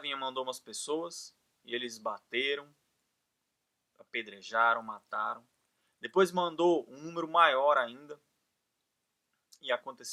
mandou umas pessoas e eles bateram, apedrejaram, mataram. Depois mandou um número maior ainda e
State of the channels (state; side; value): identical; both; correlation 1.00